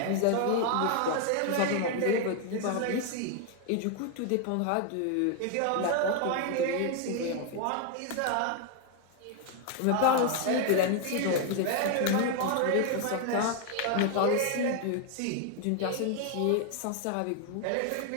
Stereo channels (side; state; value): both; different; correlation 0.00